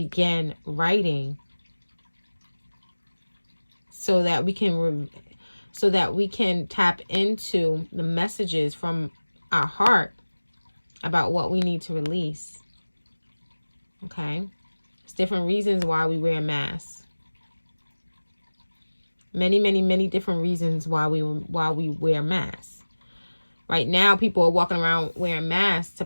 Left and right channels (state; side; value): inverted; both; correlation -1.00